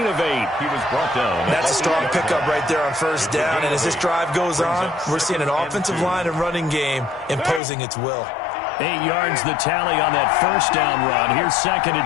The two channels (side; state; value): right; drops out; at 7.6 s